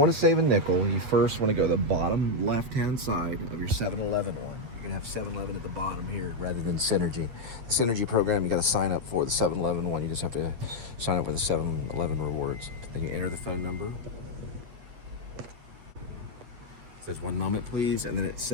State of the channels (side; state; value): left; late; 8.9 ms